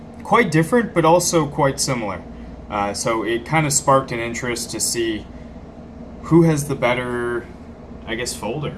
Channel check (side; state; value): both; identical; correlation 1.00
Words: quite different, but also quite similar. So it kind of sparked an interest to see who has the better, I guess, folder.